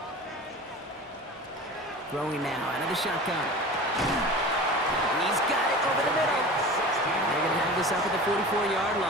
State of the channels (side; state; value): both; normal; correlation 0.35